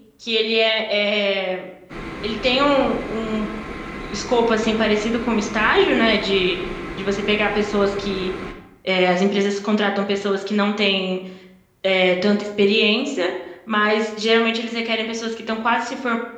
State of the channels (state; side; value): identical; both; correlation 1.00